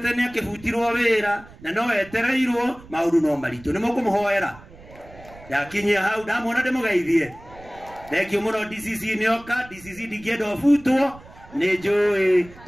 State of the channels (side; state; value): right; noise; rumble, 21 dB below the sound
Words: nĩakĩbutirwo wĩra na no etereirwo maũndũ no maritũ nĩmũkũmũhoera ndakinyia hau ndamwona ndĩmũgeithie thengiũ mũno DCC nĩoka DCC ndingĩenda ũbutwo nĩ njũĩ